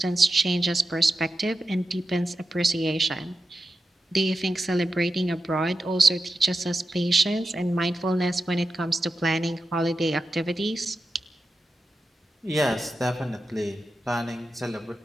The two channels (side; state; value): both; normal; correlation 0.91